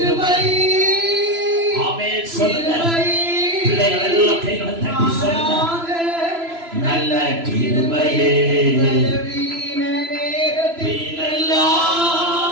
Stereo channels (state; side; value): late; left; 3.0 ms